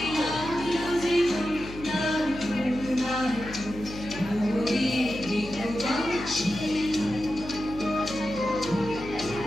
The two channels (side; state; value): left; noise; hum, 12 dB below the sound